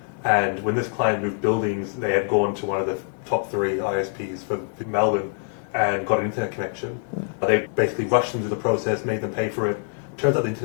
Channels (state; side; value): silent; right; 62 dB below the other